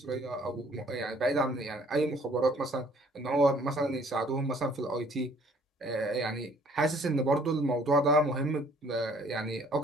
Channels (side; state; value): both; normal; correlation 0.58